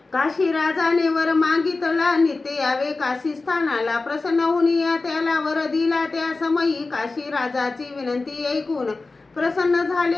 काशी राजाने वर मागितला, नित्य यावे काशी स्थानाला, प्रसन्न होऊन या त्याला वर दिला, त्या समयी काशी राजाची विनंती ऐकून प्रसन्न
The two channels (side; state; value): right; quieter; 3.6 dB